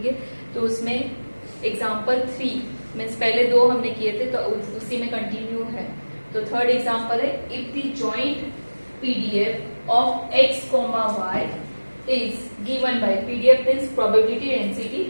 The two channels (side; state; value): both; inverted; correlation -1.00